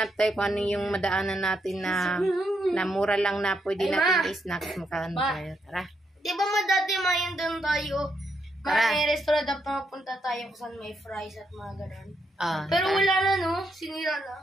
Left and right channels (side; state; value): both; normal; correlation 0.79